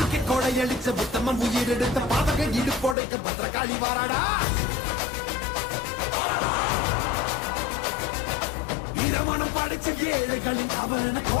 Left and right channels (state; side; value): drops out; right; at 3.0 s